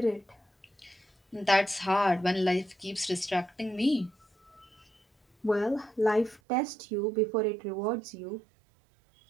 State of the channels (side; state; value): left; drops out; at 6.4 s